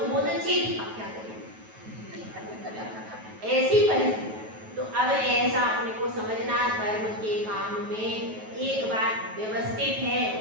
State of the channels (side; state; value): left; late; 9.3 ms